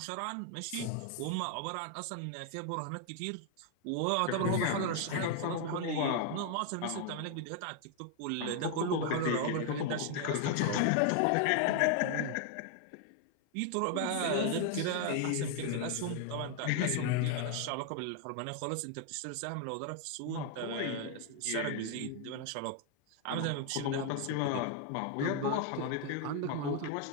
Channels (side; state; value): both; different; correlation 0.00